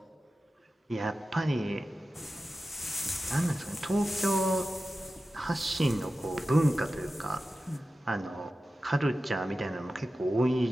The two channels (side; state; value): both; normal; correlation 0.94